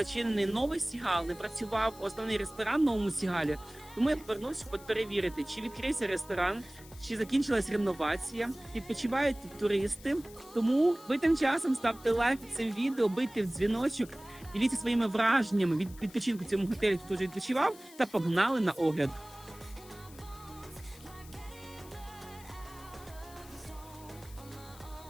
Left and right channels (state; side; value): noise; left; hiss, 21 dB below the sound